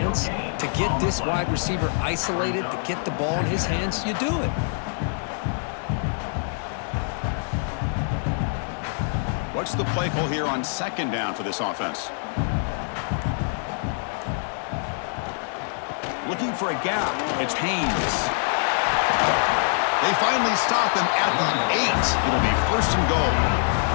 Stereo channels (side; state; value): right; silent; 57 dB below the other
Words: to get this wide receiver isolated, to get the ball in his hands, you do it. What's the play call here on second down for this offense? Looking for a gap. It's Haynes. They finally stop him at the 8. It'll be first and goal.